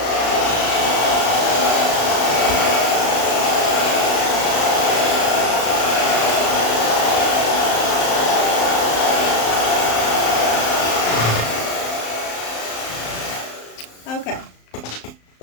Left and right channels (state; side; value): late; right; 35 ms